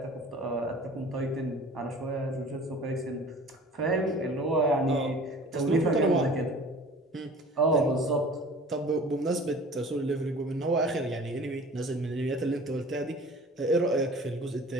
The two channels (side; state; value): both; normal; correlation 0.44